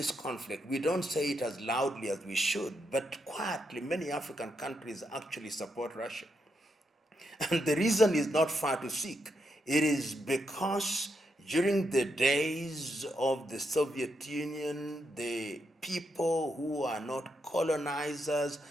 conflict, we don't say it as loudly as we should, but quietly, many African countries actually support Russia. And the reason is not far to seek. It is because during the days of the Soviet Union, the people who are not colonizers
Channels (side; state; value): both; normal; correlation 0.81